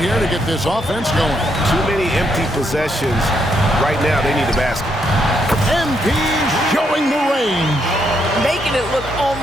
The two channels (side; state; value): both; normal; correlation 0.77